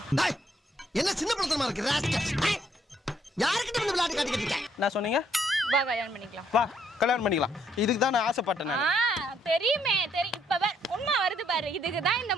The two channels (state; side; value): normal; both; correlation 0.70